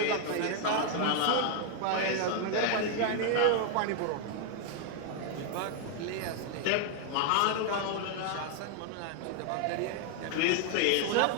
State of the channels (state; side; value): different; both; correlation 0.00